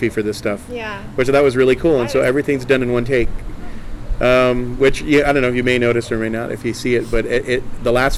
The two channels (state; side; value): identical; both; correlation 1.00